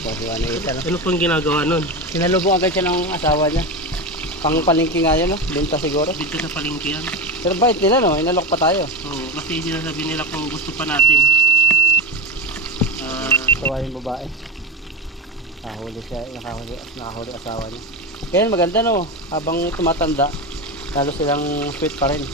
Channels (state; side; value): normal; both; correlation 0.14